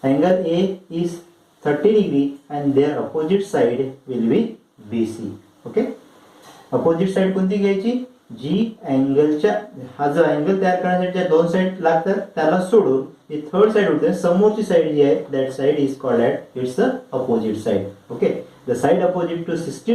Angle A is 30 degree and their opposite side will be BC. Okay, opposite side कोणती घ्यायची, जी अँगलच्या हा जो angle तयार करण्यासाठी दोन side लागतात त्याला सोडून जी थर्ड साइड होते समोरची साइड जी आहे that side is called at it's the opposite side. Okay, the side opposite to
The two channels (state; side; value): identical; both; correlation 1.00